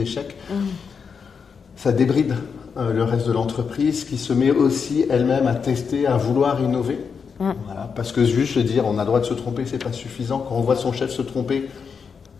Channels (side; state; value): right; quieter; 6.0 dB